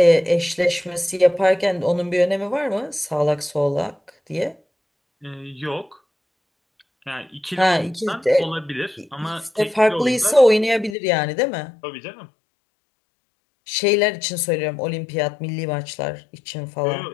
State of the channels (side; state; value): right; drops out; at 11.0 s